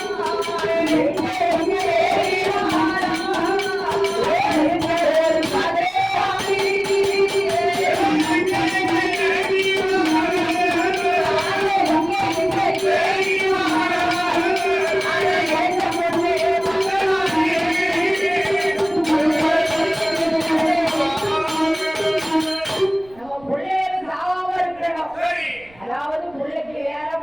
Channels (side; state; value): right; noise; rumble, 27 dB below the sound